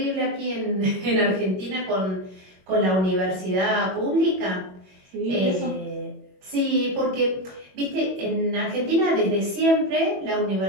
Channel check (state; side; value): late; left; 21 ms